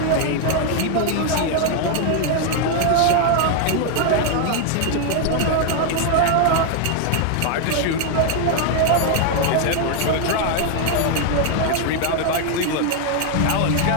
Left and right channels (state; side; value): different; both; correlation 0.00